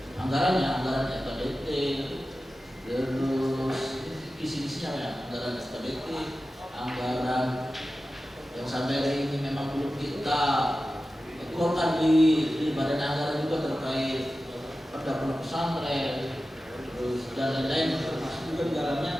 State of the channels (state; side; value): normal; both; correlation 0.94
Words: anggaran SKBT, terus isi-isinya ya, anggaran SKBT, anggaran yang sampai hari ini memang belum kita keluarkan di badan anggaran juga terkait pada pondok pesantren, terus dan lain-lain, termasuk juga di